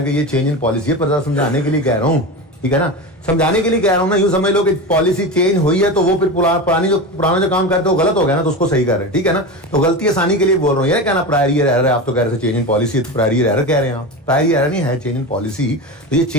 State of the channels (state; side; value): normal; both; correlation 0.24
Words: ये चेंज इन पॉलिसी है, पर समझाने के लिए कह रहा हूं, ठीक है ना। समझाने के लिए कह रहा हूं ना। यूं समझ लो कि पॉलिसी चेंज हुई है तो वो फिर पुराना जो काम करते हो गलत हो गया ना, तो उसको सही कर रहे हैं, ठीक है ना। तो गलती आसानी के लिए बोल रहा हूं। ये कहना प्रायरी एरर है, आप तो कह रहे थे चेंज इन पॉलिसी, तो प्रायरी एरर कह रहे हैं आप। प्रायरी एरर नहीं है, चेंज इन पॉलिसी, तो ये